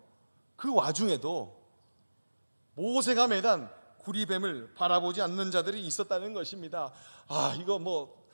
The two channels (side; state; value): both; inverted; correlation -1.00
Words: 그 와중에도 모세가 매단 구리뱀을 바라보지 않는 자들이 있었다는 것입니다. 이거